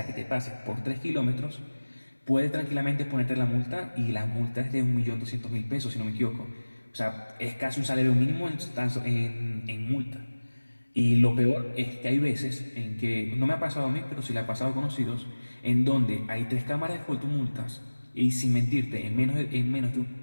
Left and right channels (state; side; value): inverted; both; correlation -1.00